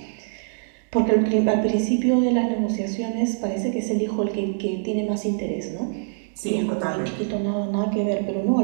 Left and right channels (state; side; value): silent; left; digital silence